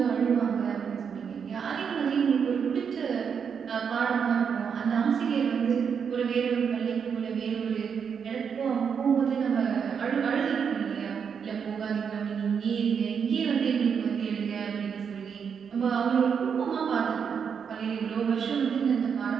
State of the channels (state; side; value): quieter; left; 6.8 dB